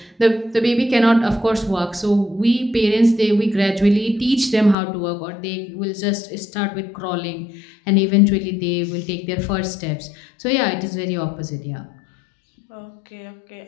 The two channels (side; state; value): right; drops out; at 4.8 s